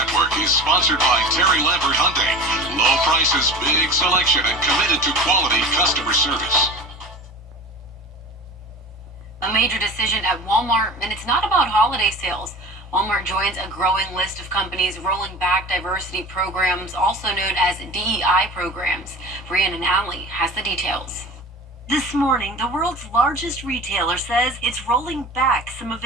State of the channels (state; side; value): normal; both; correlation 0.36